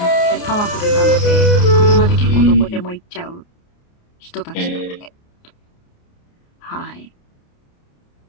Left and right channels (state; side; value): late; right; 29 ms